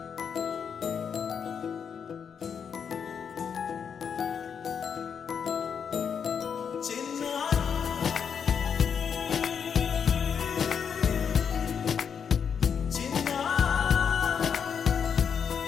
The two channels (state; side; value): quieter; right; 7.0 dB